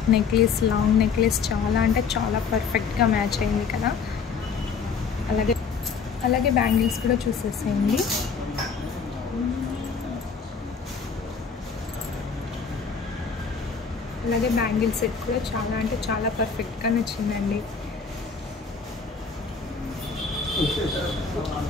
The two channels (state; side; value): quieter; right; 5.6 dB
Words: నెక్లెస్, లాంగ్ నెక్లెస్ చాలా అంటే చాలా పర్ఫెక్ట్గా మ్యాచ్ అయింది కదా. అలాగే బ్యాంగిల్స్ కూడా చూసేసేయండి. అలాగే బ్యాంగిల్ సెట్ కూడా చాలా అంటే చాలా పర్ఫెక్ట్గా నచ్చిందండి.